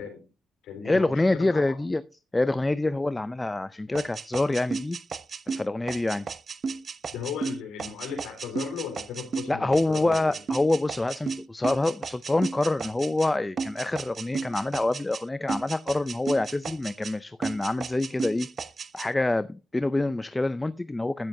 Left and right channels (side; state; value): both; normal; correlation 0.96